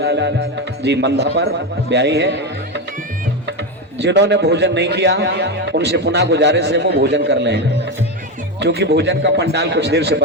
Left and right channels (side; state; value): both; normal; correlation 0.13